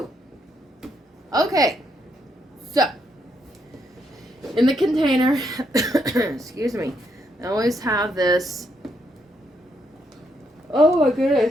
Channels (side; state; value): both; normal; correlation 0.77